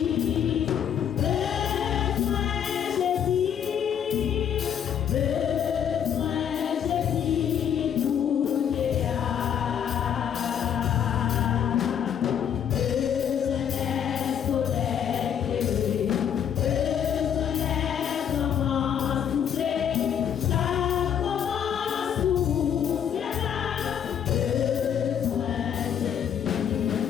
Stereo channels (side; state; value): right; quieter; 8.7 dB